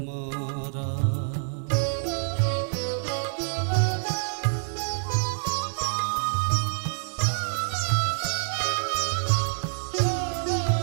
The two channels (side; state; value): left; silent; 60 dB below the other